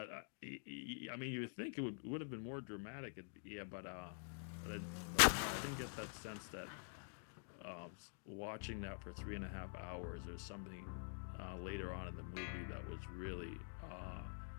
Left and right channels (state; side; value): silent; right; digital silence